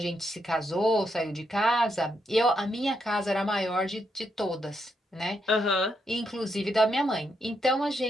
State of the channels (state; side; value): normal; both; correlation 0.80